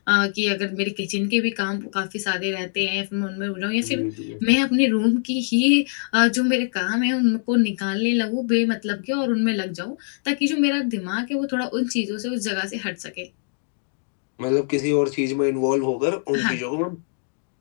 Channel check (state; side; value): silent; right; digital silence